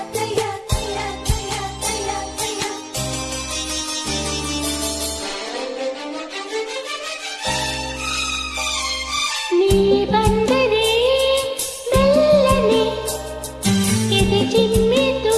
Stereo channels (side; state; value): both; identical; correlation 1.00